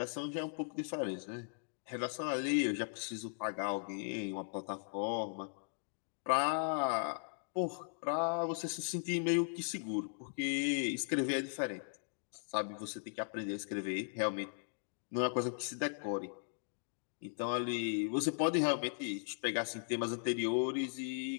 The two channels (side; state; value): right; silent; digital silence